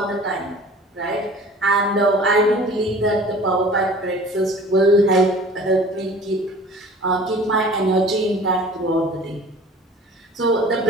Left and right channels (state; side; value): normal; both; correlation 0.45